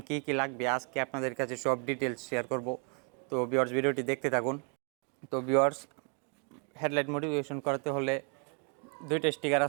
কি কি লাগবে, আজকে আপনাদের কাছে সব ডিটেলস শেয়ার করব। তো ভিউয়ার্স, ভিডিওটি দেখতে থাকুন। তো ভিউয়ার্স, হেডলাইট মডিফিকেশন করতে হলে দুইটা স্টিকার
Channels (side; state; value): left; quieter; 38.5 dB